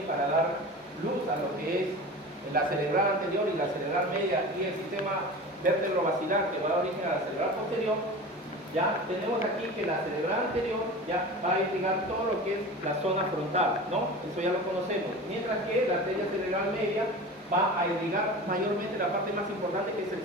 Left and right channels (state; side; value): normal; both; correlation 0.33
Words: para dar luz a lo que es la cerebral anterior y la cerebral media y el sistema vértebro-basilar que va a dar origen a la cerebral posterior. Ya tenemos aquí que la cerebral anterior ya va a irrigar todo lo que es la zona frontal, ¿no? Eso ya lo conocemos. Mientras que la arteria cerebral media va a irrigar mayormente la parte más importante, que es el